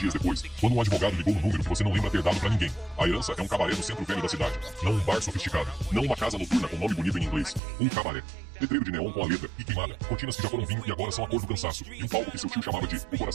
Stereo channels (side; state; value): left; drops out; at 7.6 s